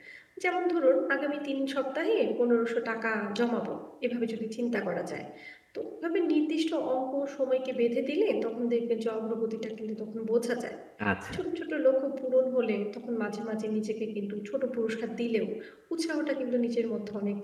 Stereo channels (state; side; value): identical; both; correlation 1.00